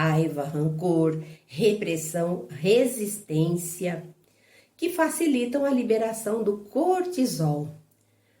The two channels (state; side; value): identical; both; correlation 1.00